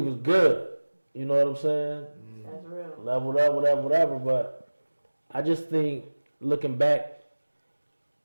good. You know what I'm saying? That's real. Leveled up, whatever. But I just think looking back,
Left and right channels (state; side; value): inverted; both; correlation -1.00